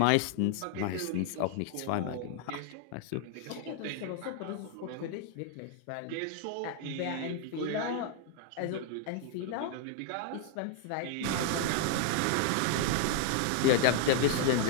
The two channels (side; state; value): both; different; correlation 0.00